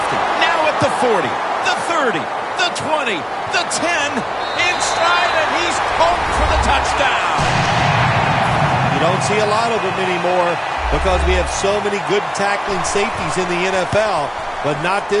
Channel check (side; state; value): both; identical; correlation 1.00